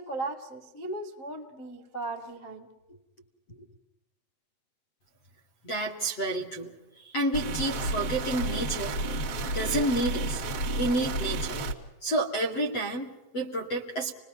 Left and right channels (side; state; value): right; late; 8.0 ms